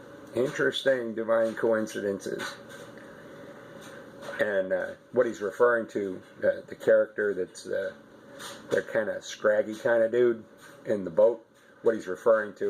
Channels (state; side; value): identical; both; correlation 1.00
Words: Interesting divine coincidences. And what he's referring to, the character that's the kind of scraggy kind of dude in the boat, what he's referring